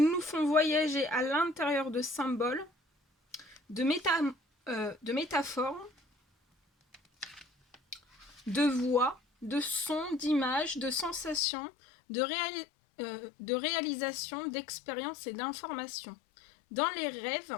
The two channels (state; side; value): drops out; right; at 11.4 s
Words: nous font voyager à l'intérieur de symboles, de métaphores, de voix, de sons, d'images, de sensations, de réalisations, d'expériences et d'informations. Dans les rêves,